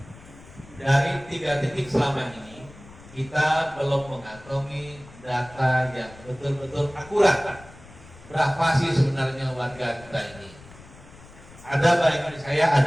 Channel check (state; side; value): noise; left; rumble, 21 dB below the sound